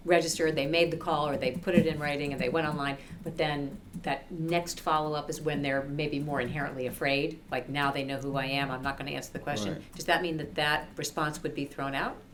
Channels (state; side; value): identical; both; correlation 1.00